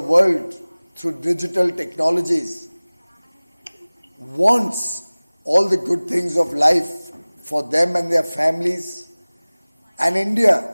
through digital technologies, wants all the good things of life for them and their families, and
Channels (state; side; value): inverted; both; correlation -1.00